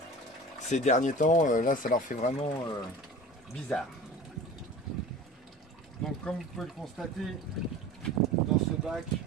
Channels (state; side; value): normal; both; correlation 0.37